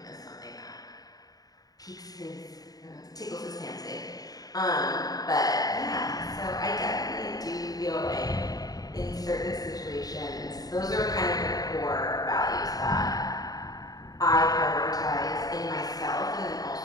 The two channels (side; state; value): right; late; 0.18 ms